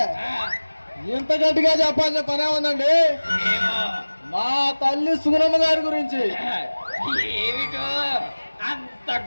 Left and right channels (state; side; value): inverted; both; correlation -1.00